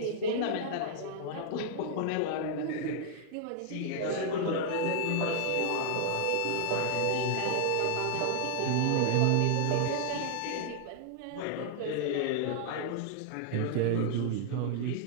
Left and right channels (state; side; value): different; both; correlation -0.01